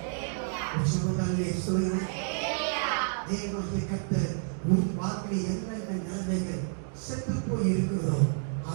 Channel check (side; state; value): left; silent; digital silence